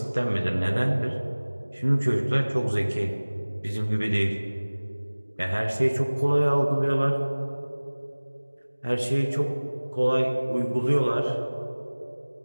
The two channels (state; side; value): inverted; both; correlation -1.00